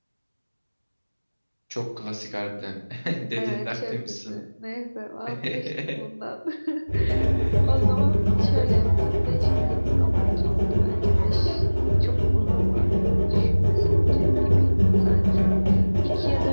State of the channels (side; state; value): both; inverted; correlation -1.00